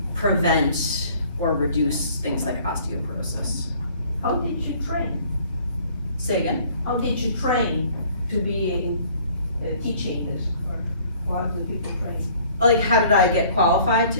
prevent or reduce things like osteoporosis. How did you train? Say again? How did you train to be teaching this, or how do people train? Like, how did I get qualified to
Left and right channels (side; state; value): both; inverted; correlation -0.55